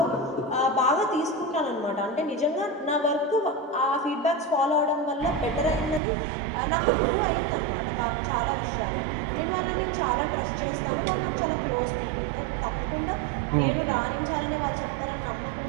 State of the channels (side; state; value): left; drops out; at 6.0 s